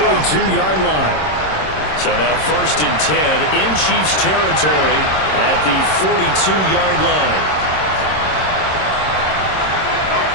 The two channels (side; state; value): right; late; 26 ms